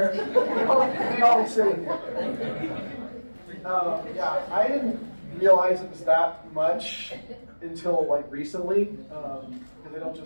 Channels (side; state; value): both; inverted; correlation -1.00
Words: all sitting here. Yeah, I didn't realize it was that much until like recently, because I don't